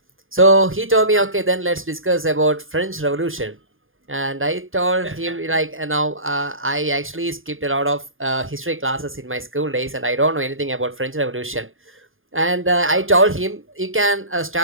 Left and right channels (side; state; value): left; late; 0.59 ms